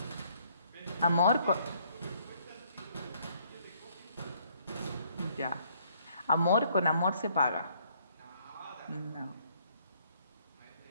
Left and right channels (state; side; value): inverted; both; correlation -0.66